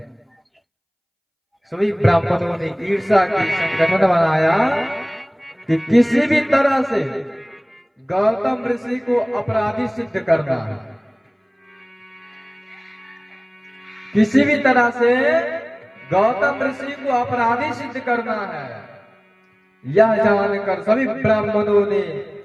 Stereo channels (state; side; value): identical; both; correlation 1.00